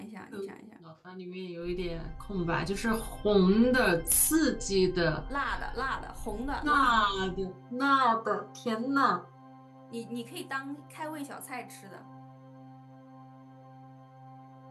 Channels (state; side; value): identical; both; correlation 1.00